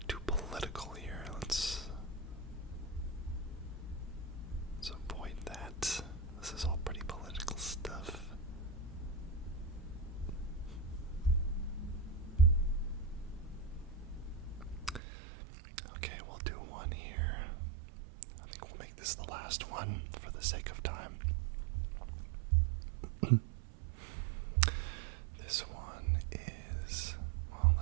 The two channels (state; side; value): drops out; left; at 15.0 s